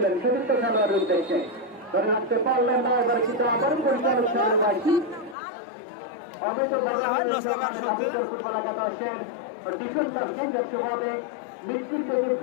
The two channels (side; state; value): right; drops out; at 5.4 s